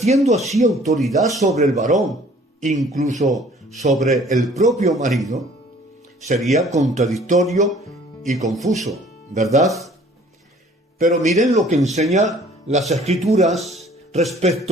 así autoridad sobre el varón, incluso sobre el propio marido? Sería contradictorio y confuso, ¿verdad? Pero miren lo que enseña las Escrituras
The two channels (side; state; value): both; normal; correlation 0.54